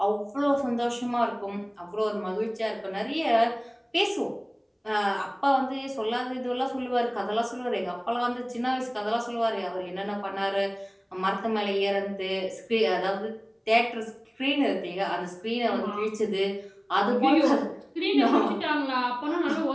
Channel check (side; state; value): both; identical; correlation 1.00